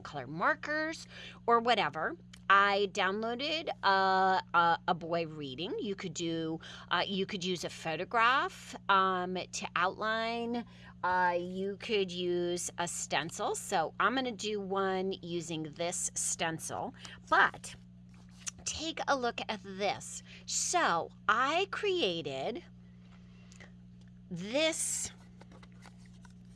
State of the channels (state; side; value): identical; both; correlation 1.00